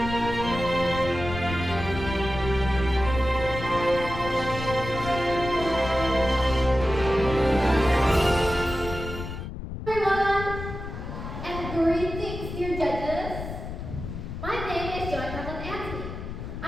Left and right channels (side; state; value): left; noise; rumble, 8 dB below the sound